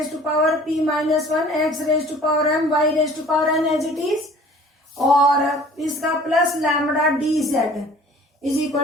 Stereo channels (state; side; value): normal; both; correlation 0.50